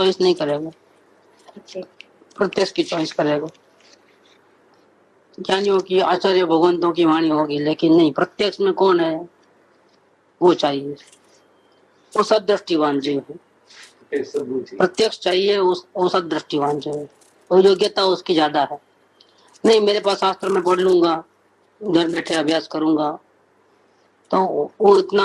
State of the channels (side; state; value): both; identical; correlation 1.00